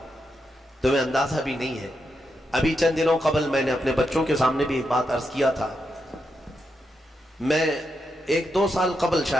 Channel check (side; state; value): both; normal; correlation 0.84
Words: تمہیں اندازہ بھی نہیں ہے۔ ابھی چند دنوں قبل میں نے اپنے بچوں کے سامنے بھی ایک بات عرض کیا تھا، میں 1-2 سال قبل